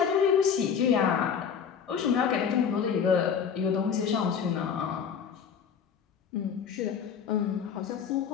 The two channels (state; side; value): quieter; right; 7.2 dB